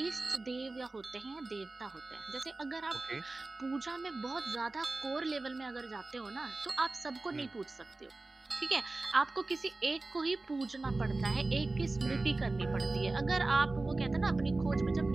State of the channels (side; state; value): left; quieter; 3.2 dB